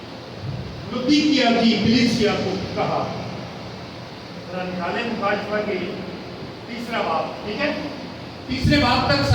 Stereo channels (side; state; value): both; identical; correlation 1.00